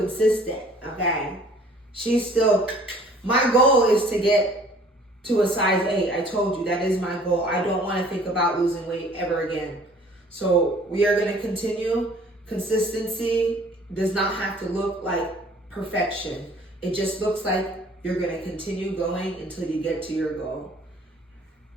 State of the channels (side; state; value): both; normal; correlation 0.54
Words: okay? She's still My goal is to get to a size 8. I told you that is my goal. I don't want to think about losing weight ever again. So we are going to continue. Consistency does not have to look like perfection. It just looks like you're going to continue going until you get to your goal.